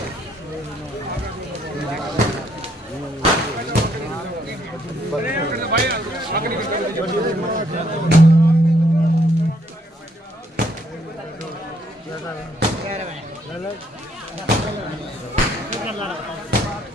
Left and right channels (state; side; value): normal; both; correlation 0.70